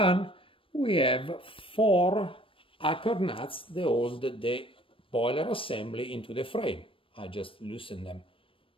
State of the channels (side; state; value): right; late; 0.25 ms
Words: we have 4 anchor nuts that hold the boiler assembly into the frame. I just loosen them.